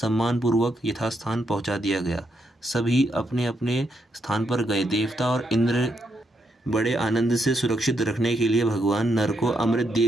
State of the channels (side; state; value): both; normal; correlation 0.79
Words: यथास्थान पहुंचा दिया गया। सभी अपने अपने स्थान पर गए। देवता और इंद्र बड़े आनंद से सुरक्षित रखने के लिए भगवान नर को अमृत